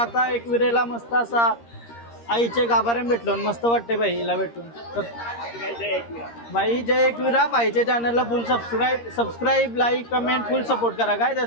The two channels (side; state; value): right; late; 13 ms